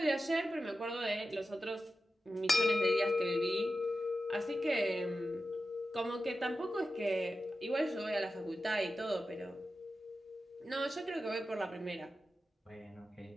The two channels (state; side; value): normal; both; correlation 0.92